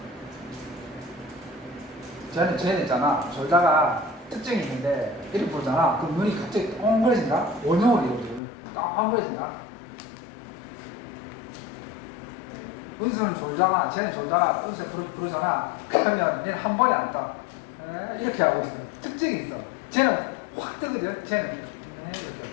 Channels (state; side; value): drops out; right; at 8.4 s